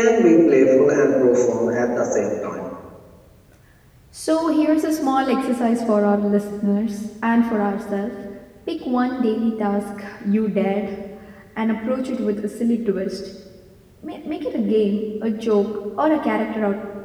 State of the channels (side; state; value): both; identical; correlation 1.00